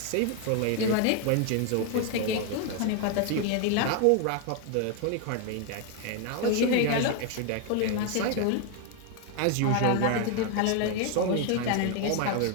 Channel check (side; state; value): both; different; correlation 0.01